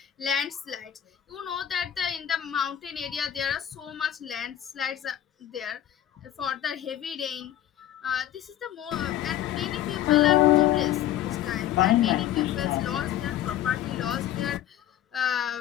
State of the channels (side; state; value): right; quieter; 11.7 dB